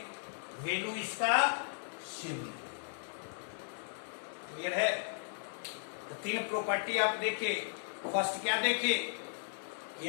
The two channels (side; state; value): right; silent; digital silence